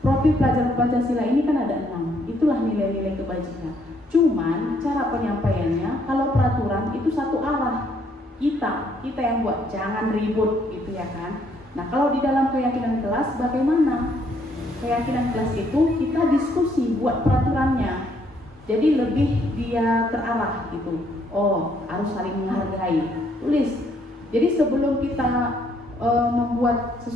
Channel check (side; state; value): both; normal; correlation 0.69